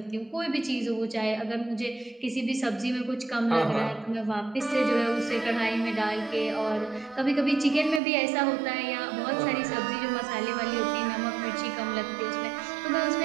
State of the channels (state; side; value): drops out; left; at 8.0 s